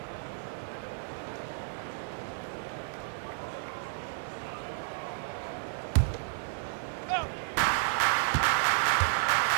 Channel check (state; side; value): silent; left; digital silence